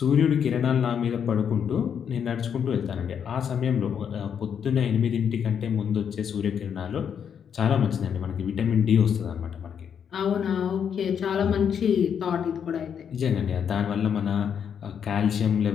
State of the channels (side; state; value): right; quieter; 7.8 dB